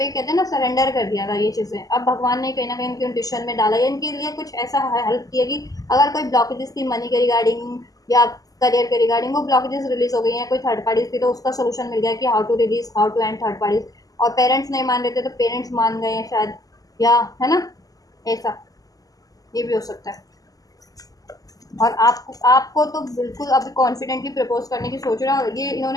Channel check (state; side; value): late; right; 0.17 ms